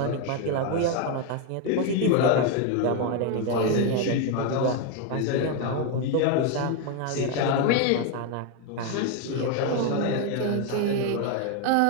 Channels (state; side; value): different; both; correlation 0.01